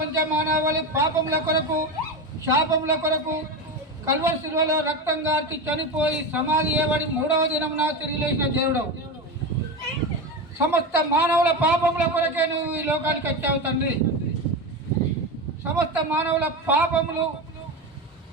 మానవాళి పాపముల కొరకు శాపముల కొరకు కల్వరి శిలువలో రక్తం గార్చి చనిపోయి సమాధి చేయబడి 3వ దినమున తిరిగి లేచిన దేవుడు. సమస్త మానవుల పాపముల కొరకే నువ్వు ఈ లోకానికి వచ్చావు తండ్రి. సమస్త మానవుల పాపములు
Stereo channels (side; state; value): both; normal; correlation 0.20